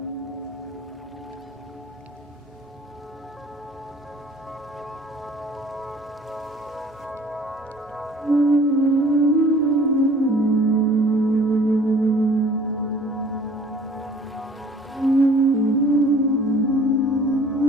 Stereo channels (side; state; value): both; normal; correlation 0.51